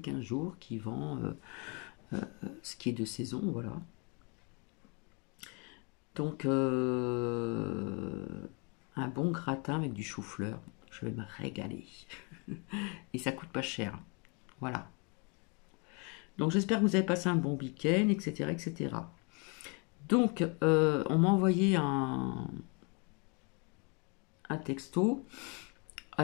jours qui vend ce qui est de saison, voilà. Donc, un bon gratin avec du chou-fleur. Je vais me régaler. Et ça coûte pas cher. Voilà. Donc, j'espère que vous avez passé un bon week-end, etc., etc. Donc, on m'a envoyé un texto.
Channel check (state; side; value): quieter; right; 33.4 dB